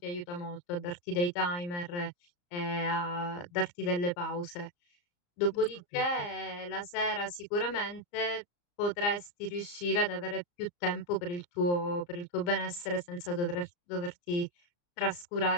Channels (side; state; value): right; late; 34 ms